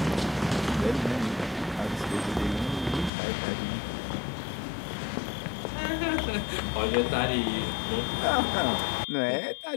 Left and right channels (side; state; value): right; drops out; at 3.1 s